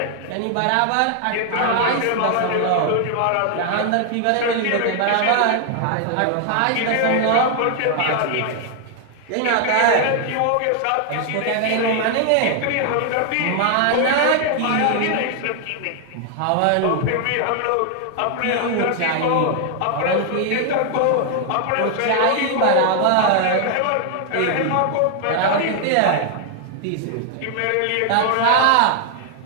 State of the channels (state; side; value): different; both; correlation 0.00